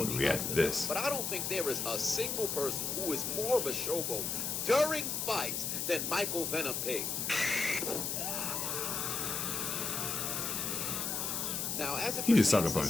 the React to octagon. this. But I don't think there is a single person who is more of a showboat during fights than Michael Venom Page. Now, as it He just pertains sucker to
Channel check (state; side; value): noise; left; hiss, 1 dB below the sound